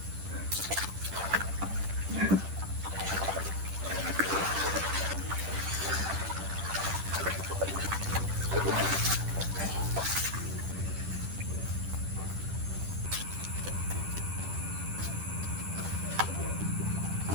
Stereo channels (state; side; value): late; left; 10 ms